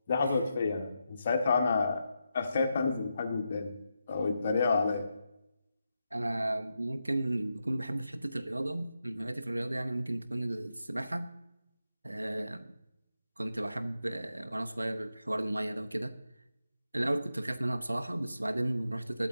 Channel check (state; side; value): inverted; both; correlation -0.87